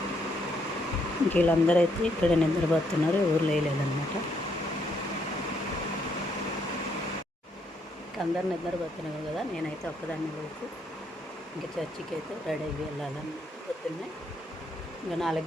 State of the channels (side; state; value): both; normal; correlation 0.73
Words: వీళ్ళందరూ అయితే ఇక్కడ నిద్రపోతున్నారు, ఊరు లేదనమాట. అందరు నిద్రపోతున్నారు కదా, నేనైతే ఒక్కదాన్ని లేచి ఇంకా చర్చికి అయితే రెడీ అయ్యి వెళ్ళాలన్నమాట. పొద్దున్నే ఇంకా 4